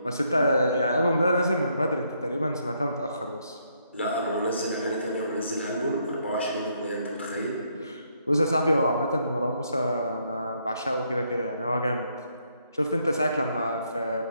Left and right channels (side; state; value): both; inverted; correlation -0.73